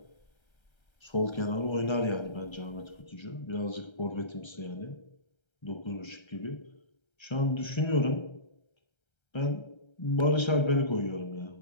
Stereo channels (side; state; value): right; late; 1.3 ms